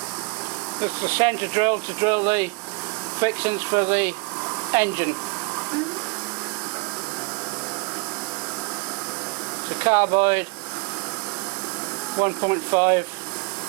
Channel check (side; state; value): left; quieter; 29.8 dB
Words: This is the centre drill to drill the fixings for the engine. The carbide 1.5